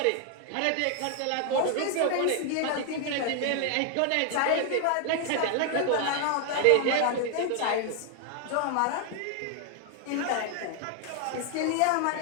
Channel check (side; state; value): both; different; correlation 0.00